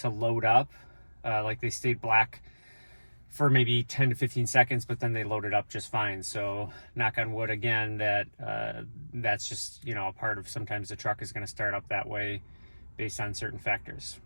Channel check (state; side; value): inverted; both; correlation -1.00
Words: load up. They stayed black for maybe 10 to 15 seconds, but then they loaded up just fine. So knock on wood again, that's just, a part of, sometimes the truck is going to start up that way based on certain factors.